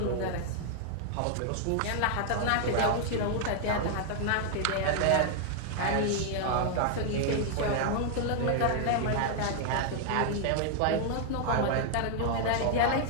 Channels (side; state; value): both; different; correlation 0.00